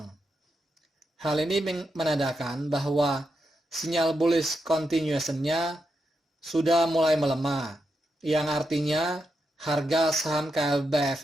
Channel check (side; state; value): both; normal; correlation 0.85